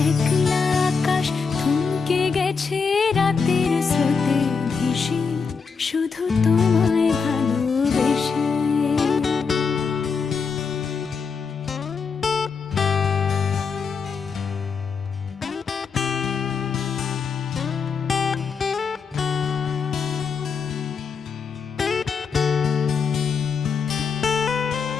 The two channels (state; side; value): quieter; right; 5.5 dB